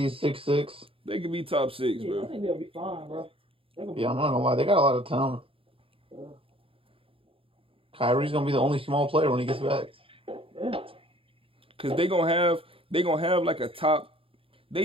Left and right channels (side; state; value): left; late; 0.27 ms